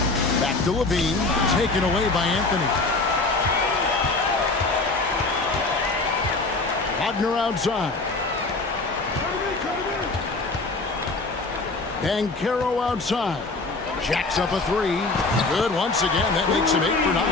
Back to Levine, taken away by Anthony. Wagner outside. Banchero outside. Jacks up a three. Good once again. That makes him 8 for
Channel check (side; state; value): right; quieter; 3.5 dB